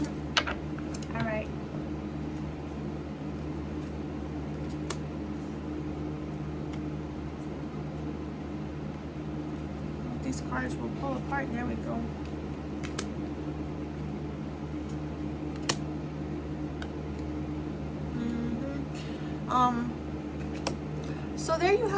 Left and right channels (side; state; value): both; identical; correlation 1.00